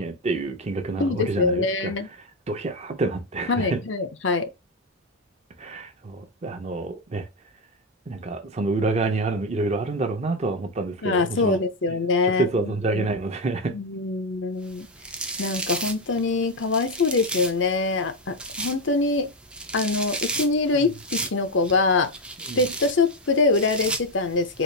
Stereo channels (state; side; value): normal; both; correlation 0.08